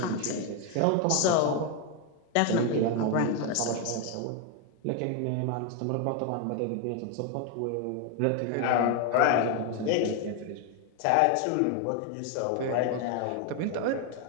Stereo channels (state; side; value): different; both; correlation 0.01